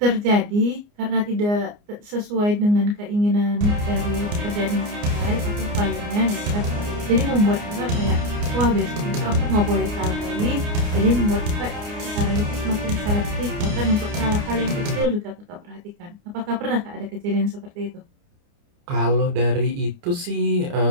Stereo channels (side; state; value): left; late; 29 ms